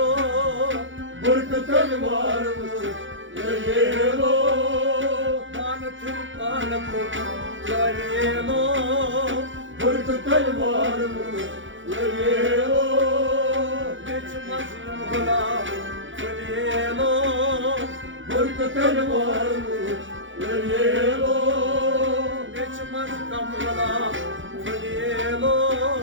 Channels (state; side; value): late; left; 0.56 ms